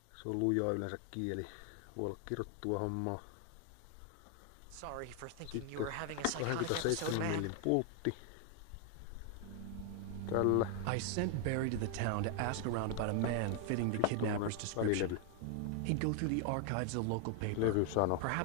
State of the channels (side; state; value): both; different; correlation 0.00